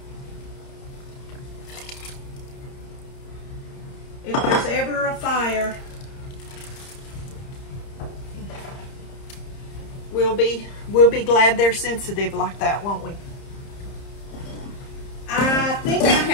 If there's ever a fire, we'll be glad they're sensitive like that, won't we? I think I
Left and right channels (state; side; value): late; right; 30 ms